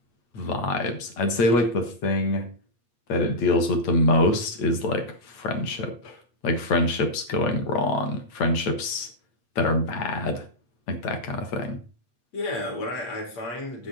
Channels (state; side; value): late; right; 8.4 ms